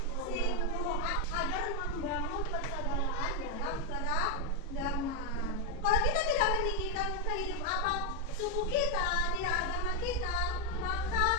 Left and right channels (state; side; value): normal; both; correlation 0.02